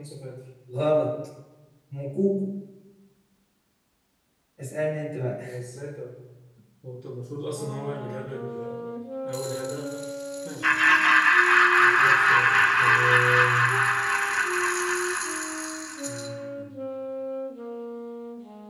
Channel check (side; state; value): both; identical; correlation 1.00